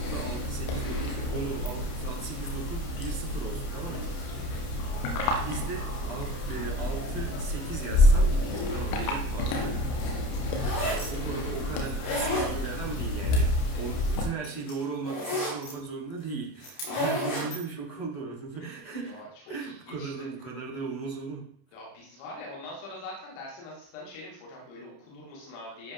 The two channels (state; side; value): late; right; 30 ms